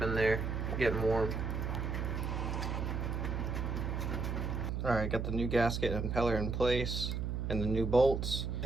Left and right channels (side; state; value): right; noise; hum, 2 dB below the sound